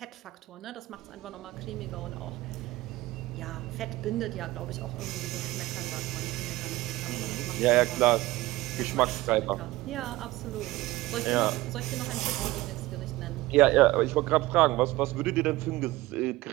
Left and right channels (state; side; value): quieter; left; 18.4 dB